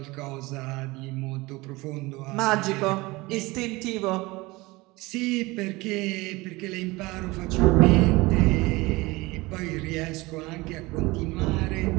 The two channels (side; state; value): left; quieter; 22.1 dB